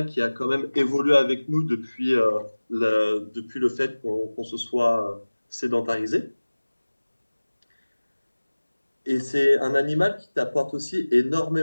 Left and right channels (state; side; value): inverted; both; correlation -1.00